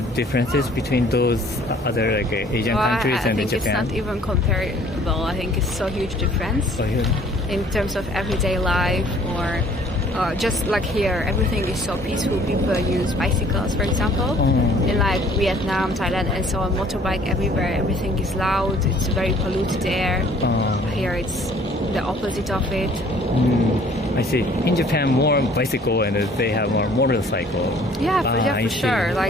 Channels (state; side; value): normal; both; correlation 0.56